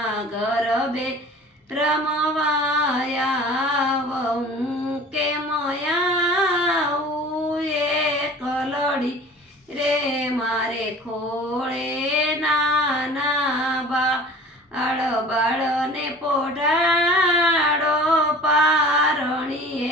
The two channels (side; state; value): both; normal; correlation 0.44